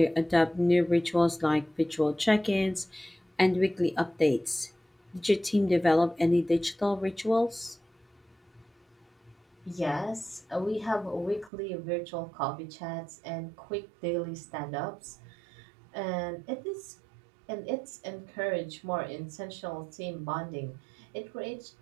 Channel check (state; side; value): drops out; left; at 11.5 s